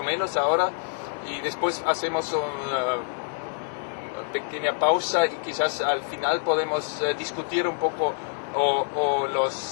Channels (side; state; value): right; silent; 61 dB below the other